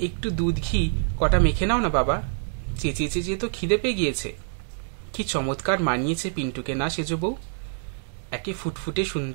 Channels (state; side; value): silent; left; digital silence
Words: একটু দুধ ঘি কটা মেখে নাও না বাবা, চেঁচিয়ে চেঁচিয়ে তো খিদে পেয়ে গিয়েছে। কি চমৎকার মানিয়েছে পিন্টুকে না সেজো বউ, একে ফুটফুটে